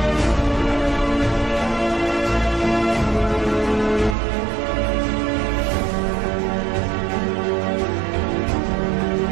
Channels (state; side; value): drops out; left; at 4.2 s